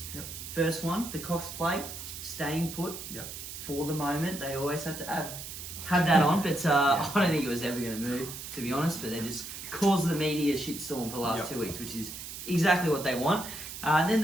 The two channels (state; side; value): noise; right; hiss, 10 dB below the sound